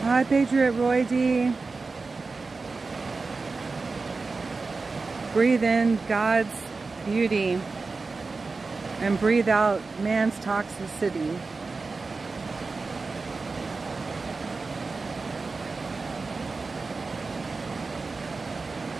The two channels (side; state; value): left; quieter; 4.0 dB